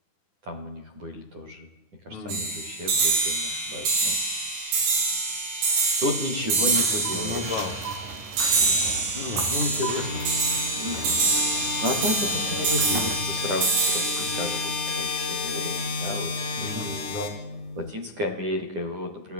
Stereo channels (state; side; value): late; left; 10 ms